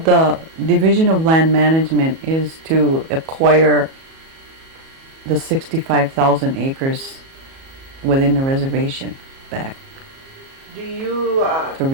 the Division of Land Management is to acquire the 65,000 acres within the reservation back, Do you to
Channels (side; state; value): left; late; 37 ms